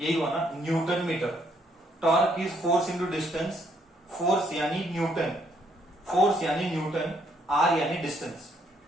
हुआ ना, newton metre. Torque is force into distance, force यानी न्यूटन, फोर्स यानी न्यूटन, r यानी डिस्टेंस,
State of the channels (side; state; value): both; normal; correlation 0.71